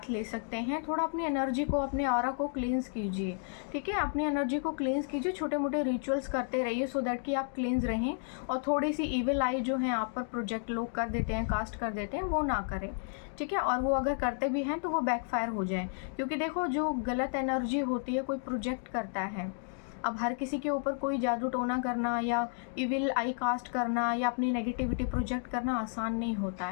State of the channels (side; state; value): right; silent; 56 dB below the other